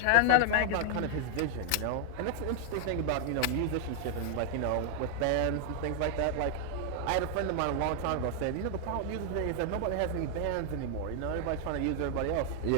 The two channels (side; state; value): both; different; correlation 0.00